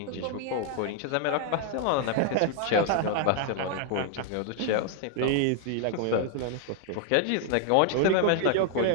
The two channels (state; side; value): different; both; correlation 0.00